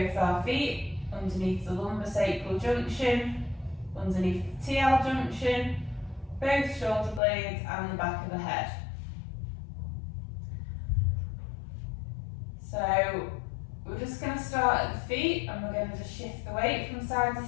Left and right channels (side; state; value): right; drops out; at 7.2 s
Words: our feet, underneath the lumbosacral junction, underneath the TL junction, both shoulder blades and the back of the head. So we're just going to start at the feet and we're going to just shift the weight from side to